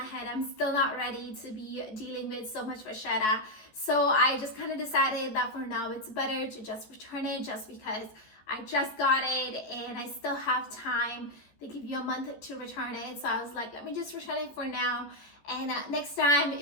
I'm still not ready to be dealing with so much vachetta. So I just kind of decided that for now, it's better to just return it, just because I just got it and I still have time. They give you a month to return it. So I was like, let me just return it for now. And next time,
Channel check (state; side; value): late; right; 14 ms